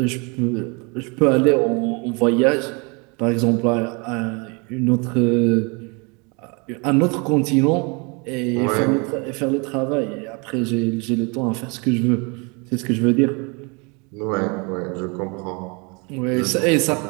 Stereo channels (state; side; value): quieter; left; 31.0 dB